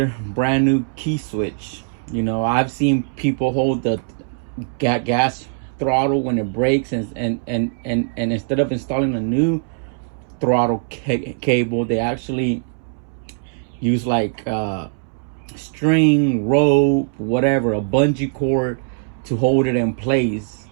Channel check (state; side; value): silent; left; 65 dB below the other